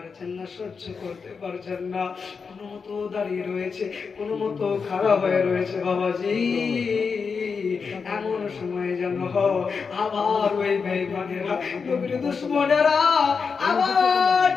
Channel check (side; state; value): right; quieter; 5.4 dB